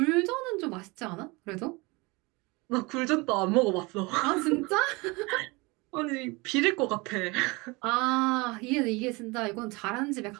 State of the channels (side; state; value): left; quieter; 25.5 dB